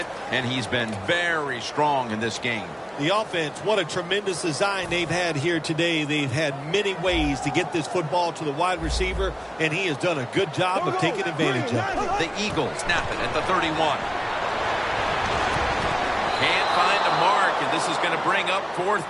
and he's been very strong in this game. The offense, what a tremendous design they've had here today. They've had many ways to get this football to the wide receiver, and he has done a good job of taking advantage of it. The Eagles snap it at the 31. Can't find a mark, and this is going to bring up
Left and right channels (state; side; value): identical; both; correlation 1.00